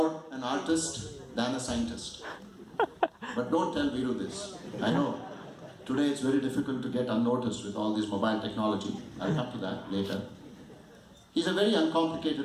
an artist than a scientist. But don't tell Viru this. I know. Today it's very difficult to get unnoticed with all this mobile technology. I'll come to that later. He's a very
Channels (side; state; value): both; identical; correlation 1.00